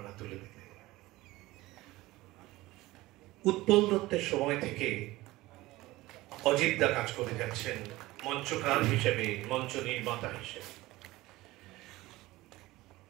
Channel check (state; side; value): quieter; left; 18.8 dB